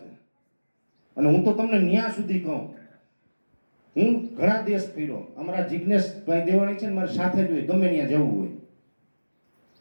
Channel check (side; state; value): both; inverted; correlation -1.00